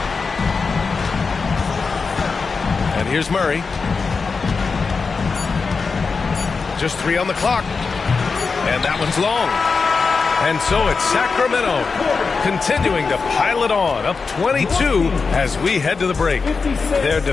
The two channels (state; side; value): quieter; right; 4.8 dB